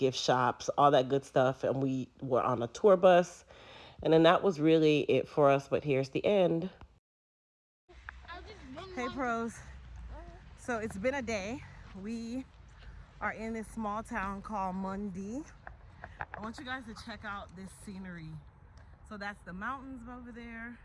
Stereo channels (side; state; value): both; identical; correlation 1.00